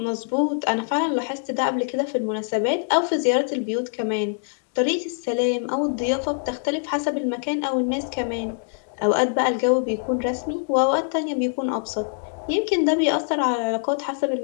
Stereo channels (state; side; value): silent; right; digital silence